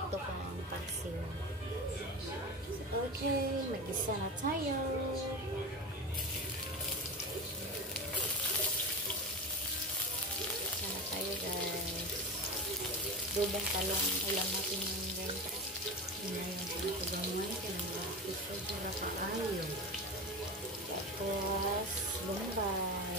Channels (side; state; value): both; normal; correlation 0.25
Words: pa ang paksiw. So, okay. Mag-isa na tayo. Isa na tayo, guys. Adobong talong. Ulam natin yung guys. Inayon ko ito gamay. Kanang ito para paayo. Tapos,